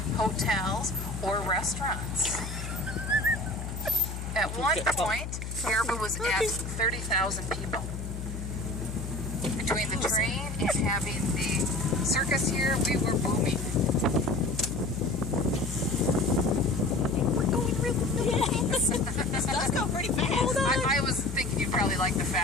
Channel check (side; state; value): left; noise; hum, 6 dB below the sound